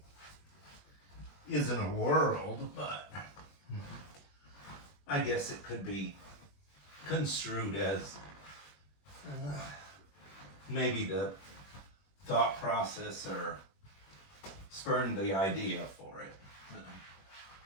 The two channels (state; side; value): late; right; 21 ms